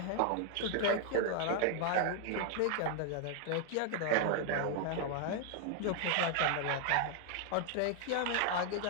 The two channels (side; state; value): both; different; correlation 0.00